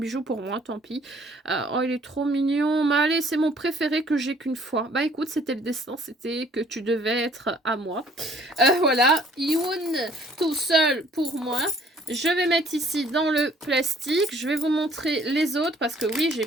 pour moi, tant pis. Oh, il est trop mignon. Mais allez, c'est mon préféré que j'ai qu'une fois. Bah, écoute, c'était le destin. C'était que tu devais être à moi. Voilà. Youn, tout seul pour moi. Je vais mettre ici dans le plastique. Je vais vous montrer les autres parce que oui, j'ai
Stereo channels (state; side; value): normal; both; correlation 0.58